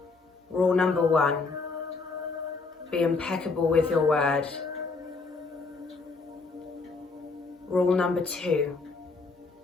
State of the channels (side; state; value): right; quieter; 4.1 dB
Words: Rule number 1, be impeccable with your word. Rule number 2,